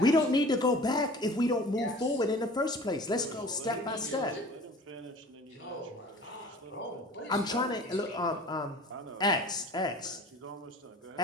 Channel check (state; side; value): normal; both; correlation 0.44